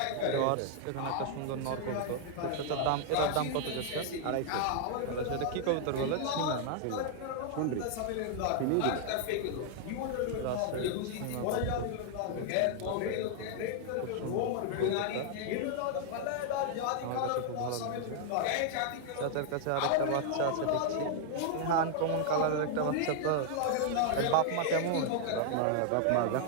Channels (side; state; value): both; different; correlation 0.00